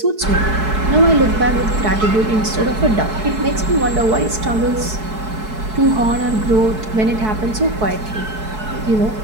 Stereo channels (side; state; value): left; late; 4.6 ms